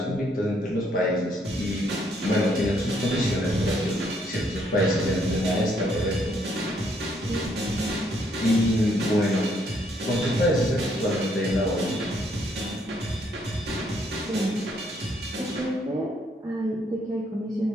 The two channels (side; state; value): both; normal; correlation 0.70